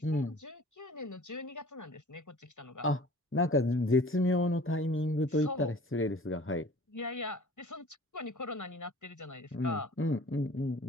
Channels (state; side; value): normal; both; correlation 0.47